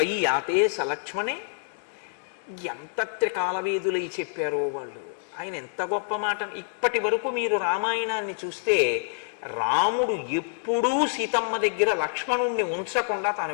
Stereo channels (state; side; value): silent; right; digital silence